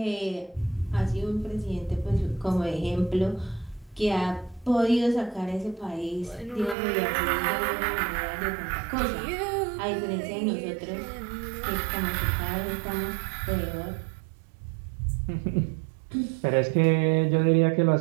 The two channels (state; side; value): drops out; left; at 6.8 s